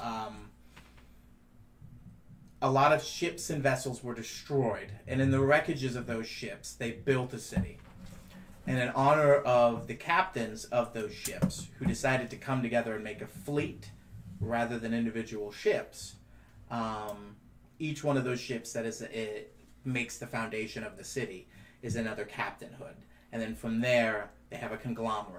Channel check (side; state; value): both; identical; correlation 1.00